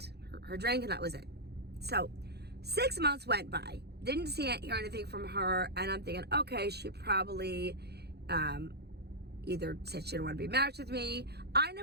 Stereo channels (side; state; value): left; late; 0.48 ms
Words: Her drink, and that was it. So 6 months went by, didn't see it, hear anything from her, and I'm thinking, okay, she probably either said she didn't want to be matched with me. I